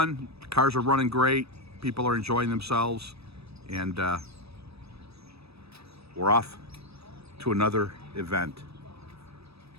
Cars are running great. People are enjoying themselves. And we're off to another event,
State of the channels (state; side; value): late; left; 0.78 ms